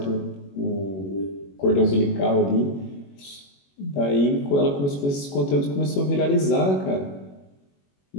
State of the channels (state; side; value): late; right; 21 ms